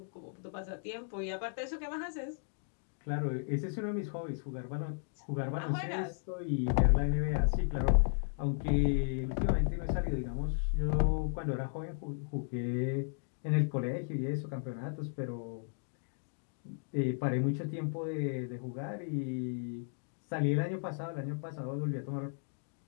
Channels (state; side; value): silent; right; digital silence